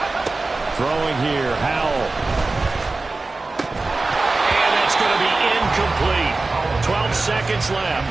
Throwing here, Howell. And that's going to be incomplete. 12 seconds left.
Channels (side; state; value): left; quieter; 3.4 dB